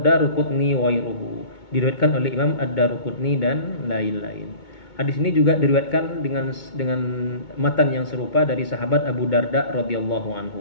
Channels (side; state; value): right; late; 2.2 ms